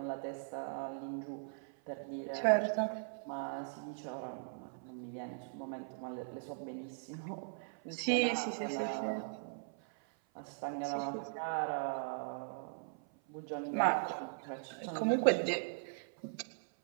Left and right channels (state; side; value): silent; left; 52 dB below the other